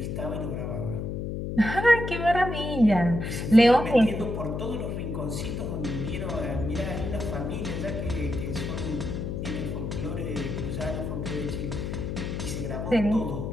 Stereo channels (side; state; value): left; noise; hum, 4 dB below the sound